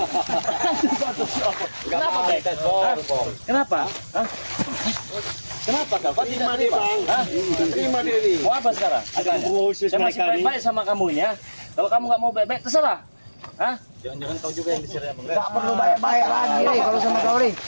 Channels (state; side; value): inverted; both; correlation -1.00